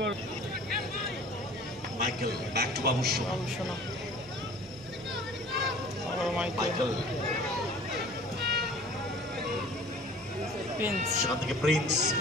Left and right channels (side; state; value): both; normal; correlation 0.46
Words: Michael back to Babusona Michael সেখান থেকে প্রিন্স